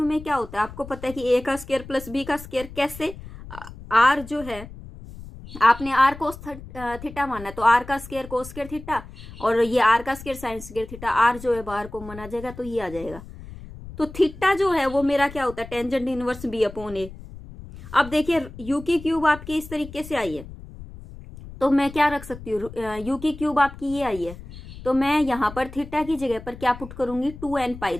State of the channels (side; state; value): left; noise; rumble, 15 dB below the sound